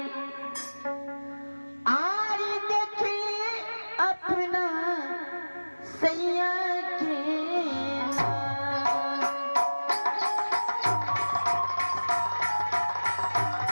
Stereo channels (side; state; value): both; inverted; correlation -1.00